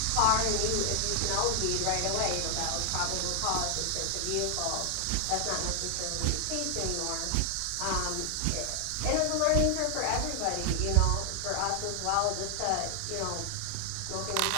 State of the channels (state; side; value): different; both; correlation 0.00